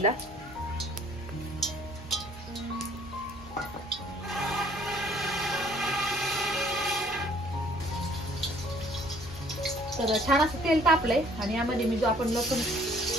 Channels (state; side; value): normal; both; correlation 0.58